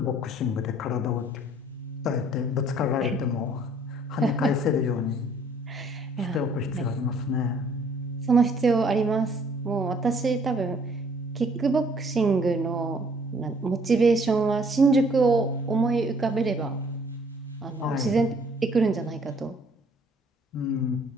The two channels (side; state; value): both; normal; correlation 0.60